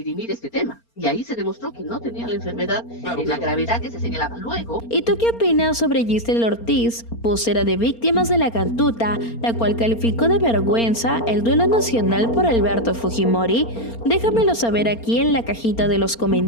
este tema. Y ahí se demostró que no tenía la enfermedad, la gravedad que se señalaba. Luego... ¿Y tú qué opinas sobre Gisela Ortiz, vocera de víctimas de la Cantuta, la cual calificó de vergüenza el duelo nacional por Alberto Fujimori? Déjamelo saber aquí en la cajita de los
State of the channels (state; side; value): late; right; 4.3 ms